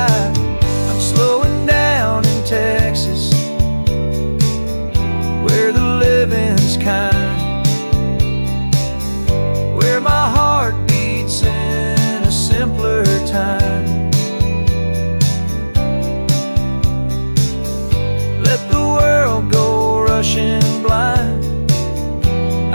slowing down in Texas, where the living's kind, where my heart beats in a simpler time.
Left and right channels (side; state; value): both; inverted; correlation -1.00